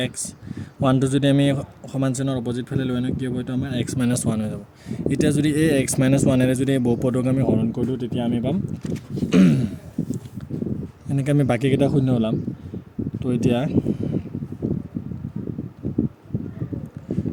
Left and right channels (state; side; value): identical; both; correlation 1.00